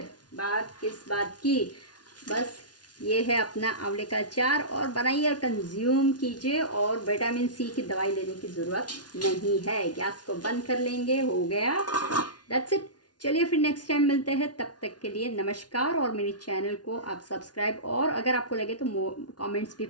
बात किस बात की, बस ये है अपना आंवले का अचार, और बनाइए और कंज्यूम कीजिए, और विटामिन सी की दवाई लेने की ज़रूरत नहीं है। गैस को बंद कर लेंगे, हो गया, दैट्स इट। चलिए फिर नेक्स्ट टाइम मिलते हैं, तब तक के लिए नमस्कार। और मेरे चैनल को आप सब्सक्राइब और अगर आपको लगे तो कमेंट्स भी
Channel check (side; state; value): right; late; 0.69 ms